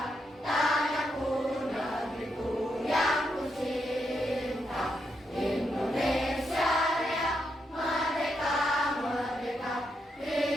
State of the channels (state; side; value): normal; both; correlation 0.81